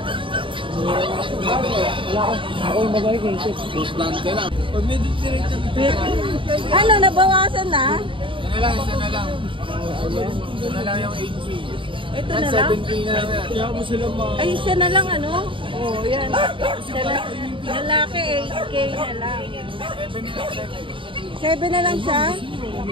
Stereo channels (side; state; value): left; late; 0.25 ms